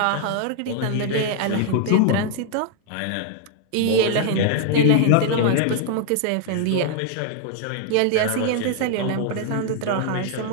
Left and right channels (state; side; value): different; both; correlation 0.00